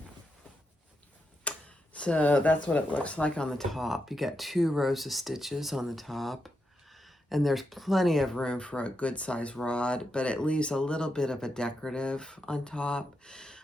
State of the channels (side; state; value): both; normal; correlation 0.84